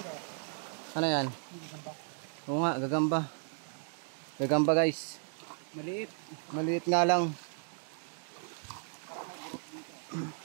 Ano yan? Oo nga, gagamba. Gagamba guys. Maliit. Maliit nga lang.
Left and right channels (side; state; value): left; silent; 55 dB below the other